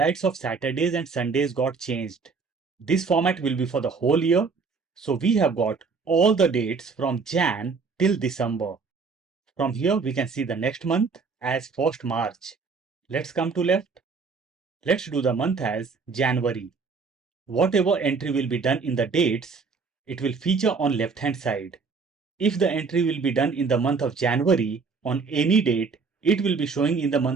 of Saturdays and Sundays got changed. This format will be for the whole year. So we have got all the dates from Jan till December. From here, we can see the next month as 1st March. Let's come to left. Let's do the month as January. Whatever entry will be done in the dates, it will feature on left hand side. If the entry will be done in the month of January on any date, it will be showing in the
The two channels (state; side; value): quieter; left; 4.8 dB